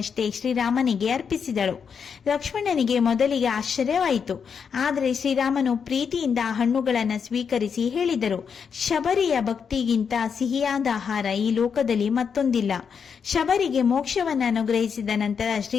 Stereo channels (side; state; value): right; quieter; 6.6 dB